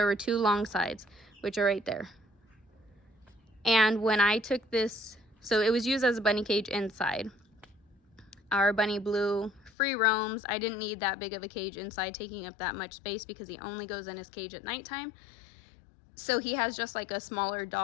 were 2 long sides, which are right there. And when I took this, so it was used as a bunny cage inside. Our bunny Bleu free roams. I didn't need that big of a cage inside taking up that much space because he only goes in his cage at nighttime. So he has just like a smaller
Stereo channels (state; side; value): drops out; right; at 9.7 s